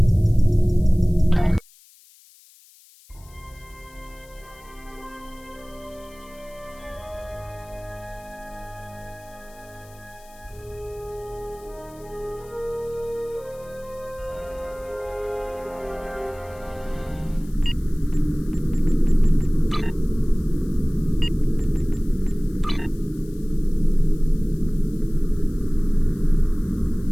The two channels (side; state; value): left; noise; hiss, 26 dB below the sound